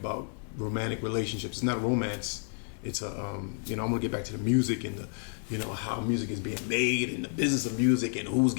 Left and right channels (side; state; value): right; silent; 57 dB below the other